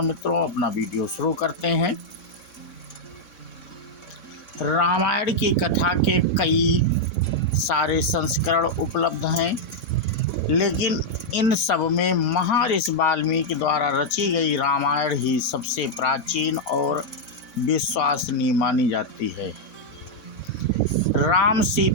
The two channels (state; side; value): late; right; 4.0 ms